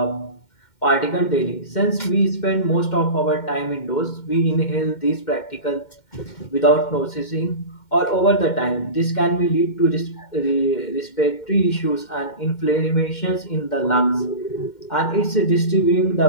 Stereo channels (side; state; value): right; late; 2.1 ms